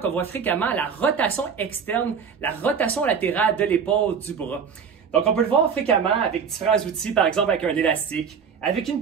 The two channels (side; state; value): left; quieter; 6.5 dB